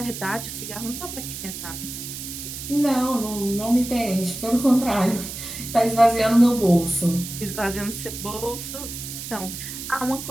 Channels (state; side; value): noise; right; hiss, 9 dB below the sound